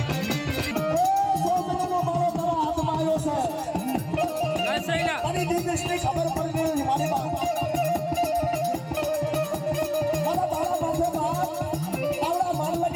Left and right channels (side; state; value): both; identical; correlation 1.00